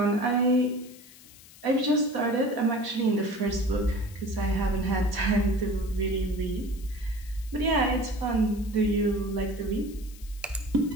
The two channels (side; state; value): left; noise; hiss, 21 dB below the sound